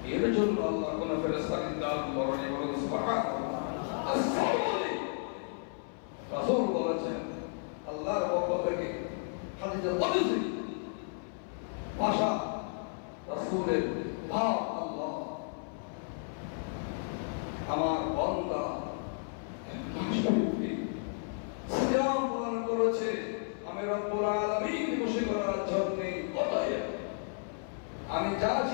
এর জন্য আল্লাহ কোন ফেরেশতা নির্ধারণ করেন। বলুন সুবহানাল্লাহ। রাসূল বলেছেন আল্লাহর পক্ষ থেকে হাদিসে কুদসি ভাষা, রাসূলের ভাব, আল্লাহ আমার বান্দা সিয়াম পালন করেছে, আমি রব্বুল আলামিন খুশি করার জন্য, অতএব আমি যা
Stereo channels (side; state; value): right; silent; 56 dB below the other